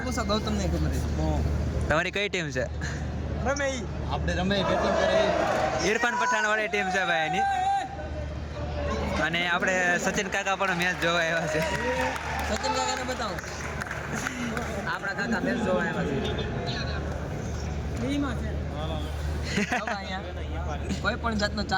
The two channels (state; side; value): identical; both; correlation 1.00